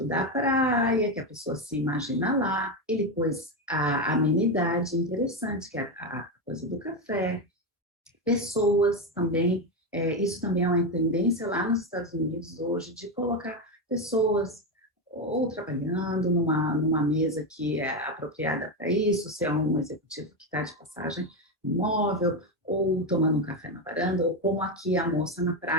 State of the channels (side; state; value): both; normal; correlation 0.11